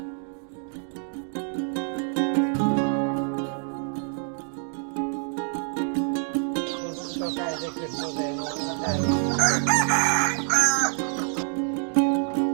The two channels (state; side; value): silent; left; 61 dB below the other